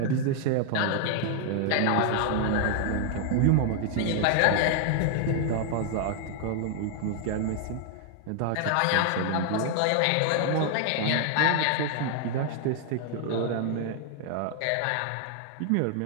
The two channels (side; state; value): both; different; correlation 0.00